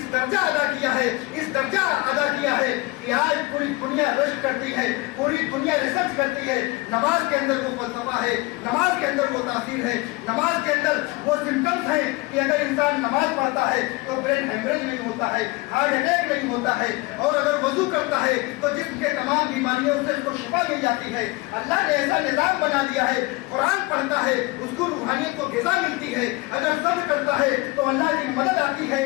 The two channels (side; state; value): right; quieter; 22.8 dB